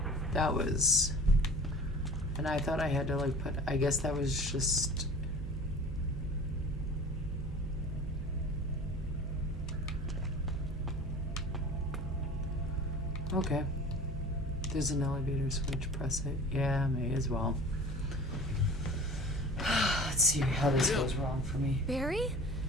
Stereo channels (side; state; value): right; noise; hum, 7 dB below the sound